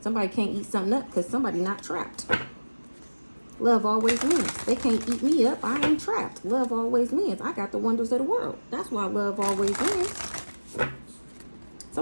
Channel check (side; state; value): both; inverted; correlation -1.00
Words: Somebody can't eat something up because somebody not trapped. Love always wins. They can't eat me up. I ain't trapped. Love always wins. I got the wonders of the world. That's why love always wins.